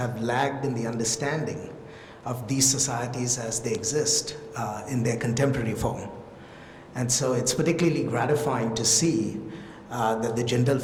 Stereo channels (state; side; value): identical; both; correlation 1.00